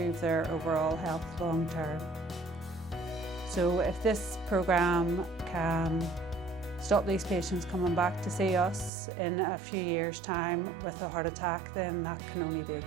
their overall health long term. So if this programme can stop these patients coming back to see us in a few years' time with a heart attack, then that can only be a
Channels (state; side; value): drops out; left; at 8.9 s